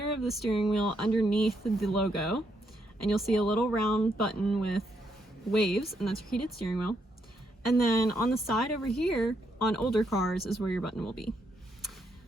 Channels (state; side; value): normal; both; correlation 0.77